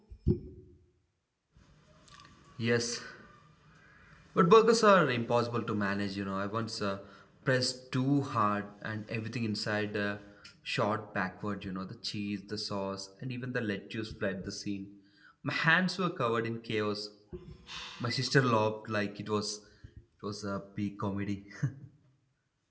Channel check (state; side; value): identical; both; correlation 1.00